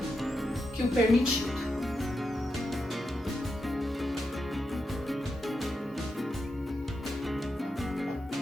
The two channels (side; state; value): both; normal; correlation 0.86